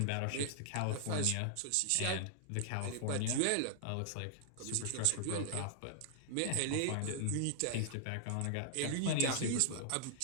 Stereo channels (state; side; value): different; both; correlation -0.01